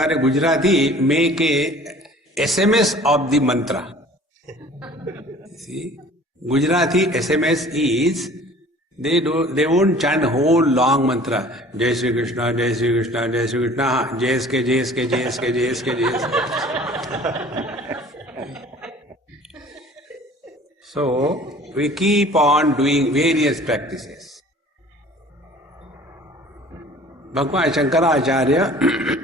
a Gujarati, make a SMS of the mantra. See? Gujarati SMS is, they won't chant whole long mantra. Jai Sri Krishna, Jai Sri Krishna, Jai Sri Krishna. Jai SK, Jai SK, Jai SK, Jai SK, Jai SK. So, we keep on doing various practices. Bhagwan Shankaracharya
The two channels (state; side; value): normal; both; correlation 0.48